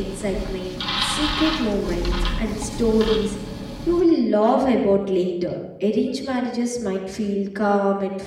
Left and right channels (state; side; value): identical; both; correlation 1.00